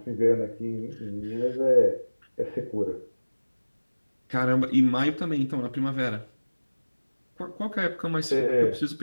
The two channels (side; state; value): both; inverted; correlation -1.00